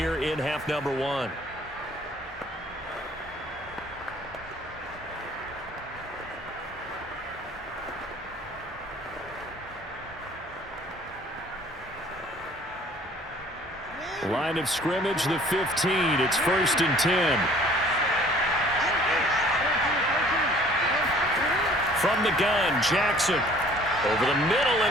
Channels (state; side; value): normal; both; correlation 0.54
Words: in half number 1. Line of scrimmage, the 15. It's 1st and 10. From the gun, Jackson. Over the middle